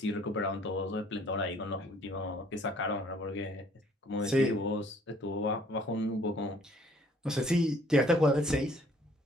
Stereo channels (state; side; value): normal; both; correlation 0.59